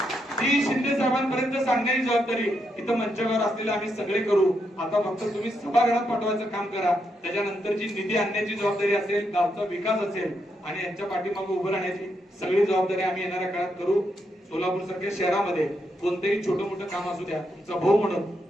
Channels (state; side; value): normal; both; correlation 0.81